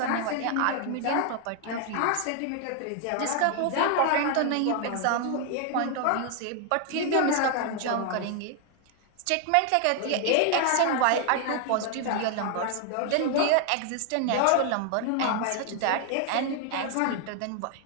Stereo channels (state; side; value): different; both; correlation 0.00